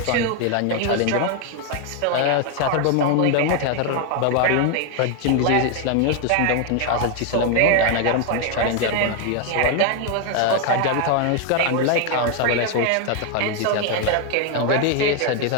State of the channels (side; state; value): both; different; correlation 0.01